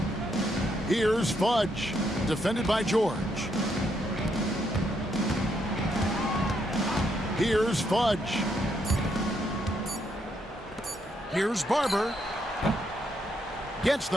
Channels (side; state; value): both; normal; correlation 0.76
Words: Here's Fudge. Defended by George. Here's Fudge. Here's Barber. Gets